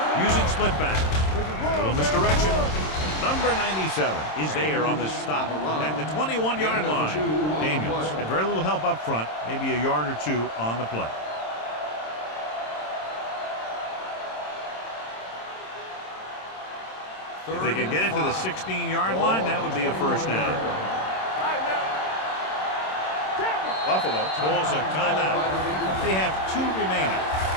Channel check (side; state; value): right; late; 26 ms